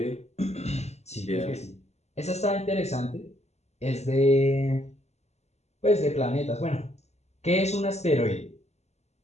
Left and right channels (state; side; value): late; right; 0.32 ms